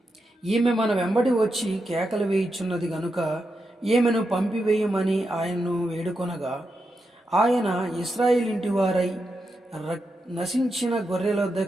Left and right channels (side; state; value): both; normal; correlation 0.86